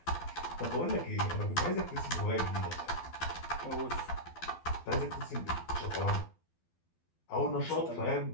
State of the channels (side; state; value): right; late; 12 ms